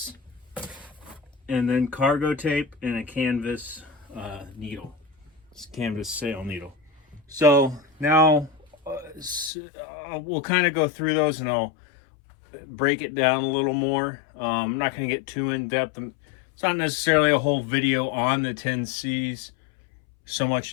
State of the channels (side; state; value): right; drops out; at 9.5 s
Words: and then cargo tape and a canvas needle. It's a canvas sail needle. So now we'll kind of go through those and I'll break it down a little more. I'm not going to get too in depth. It's not necessarily a whole video on the 10 C's, so